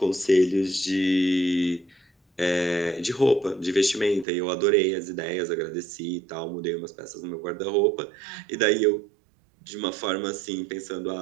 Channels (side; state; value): left; drops out; at 4.2 s